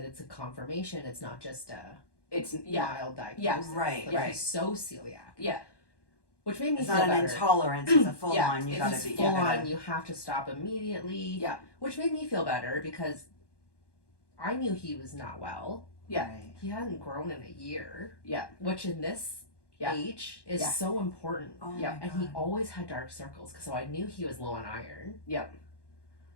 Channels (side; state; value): right; late; 1.1 ms